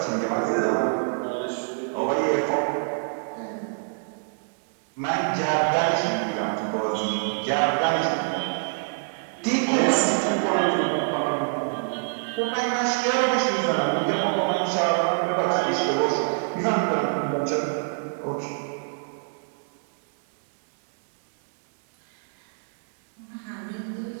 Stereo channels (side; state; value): left; silent; digital silence